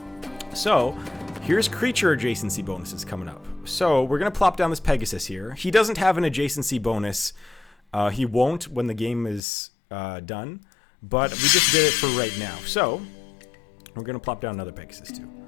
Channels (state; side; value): drops out; right; at 9.4 s